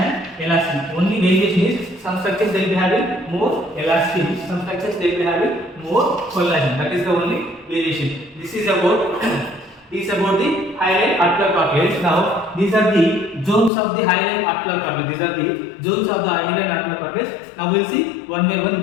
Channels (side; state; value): right; drops out; at 13.7 s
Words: elastin. Only variation is some structures they will be having more elastin, some structures they will be having more collagen. That is the only variation. This is about the hyaline articular cartilage. Now these are the zones of the hyaline articular cartilage. These are the zones of the hyaline articular cartilage. Now we will see one by one